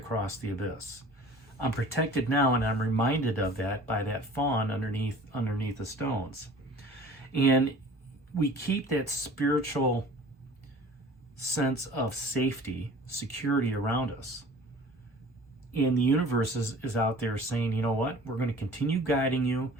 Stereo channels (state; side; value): normal; both; correlation 0.45